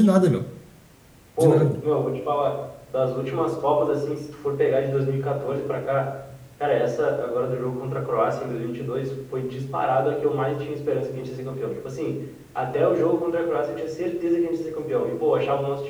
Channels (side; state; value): both; identical; correlation 1.00